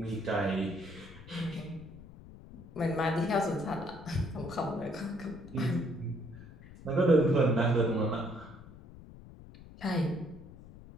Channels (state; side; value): noise; left; rumble, 18 dB below the sound